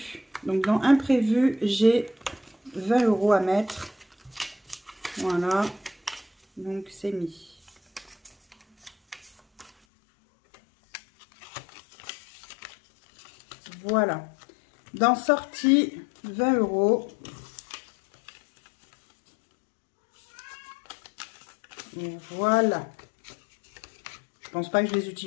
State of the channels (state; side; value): drops out; right; at 9.7 s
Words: Donc, dans imprévu, j'ai 20 € à mettre. Voilà. Donc, c'est mis. Voilà. Dans sortie, 20 €. Et voilà. Je pense pas que je les